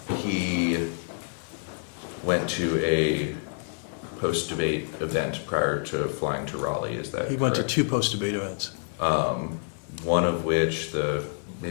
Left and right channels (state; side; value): silent; right; 58 dB below the other